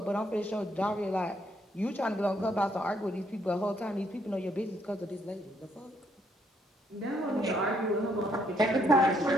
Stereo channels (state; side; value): normal; both; correlation 0.71